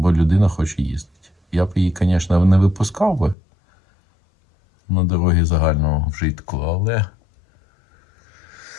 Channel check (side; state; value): right; drops out; at 3.4 s